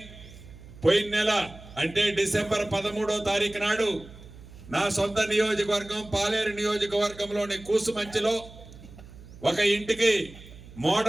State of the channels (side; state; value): right; noise; hum, 18 dB below the sound